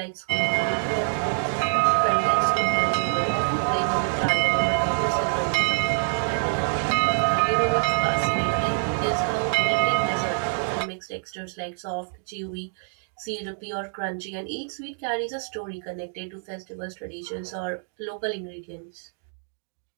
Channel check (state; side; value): silent; left; 60 dB below the other